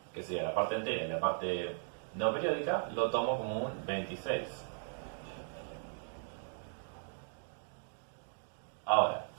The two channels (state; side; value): silent; left; digital silence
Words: que sería la parte entera y la parte no periódica, lo tomo como un 26. Ahora,